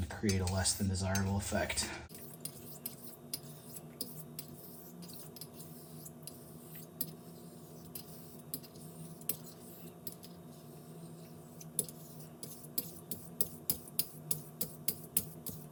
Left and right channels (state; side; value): identical; both; correlation 1.00